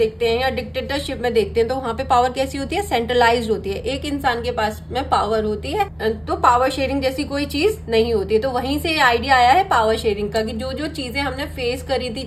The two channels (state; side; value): identical; both; correlation 1.00